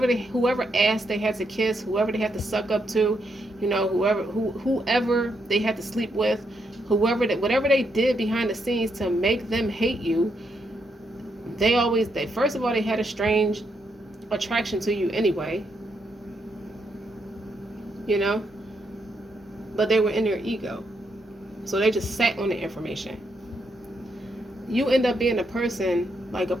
ass they had to kiss, whoever they had to suck up to, whoever they had to sleep with, whatever they did behind the scenes to make them hate you, they first of all, they had a strange attraction to you anyway, but they were in their ego, so they just sat on the information. You end up being a person like a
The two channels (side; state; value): both; normal; correlation 0.79